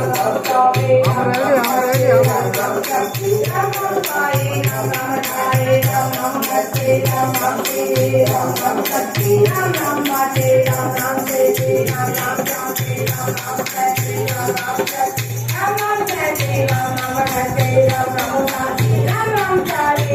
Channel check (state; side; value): identical; both; correlation 1.00